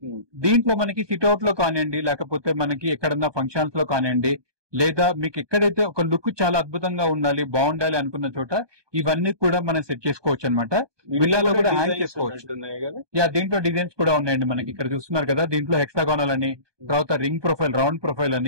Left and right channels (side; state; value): left; late; 1.2 ms